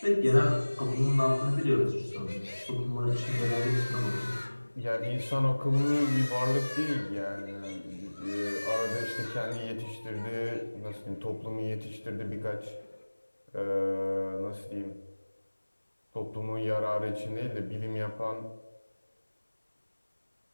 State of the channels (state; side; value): inverted; both; correlation -1.00